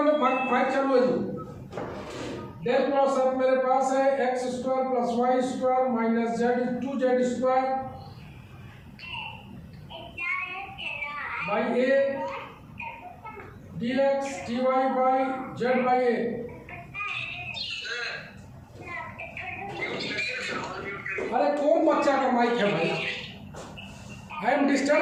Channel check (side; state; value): both; identical; correlation 1.00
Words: माइक चालू है जी। डेल क्रॉस एफ मेरे पास है x square plus Y square minus z 2z square by a dx dy by z by a. अरे कौन बच्चा का माइक है भाई? I am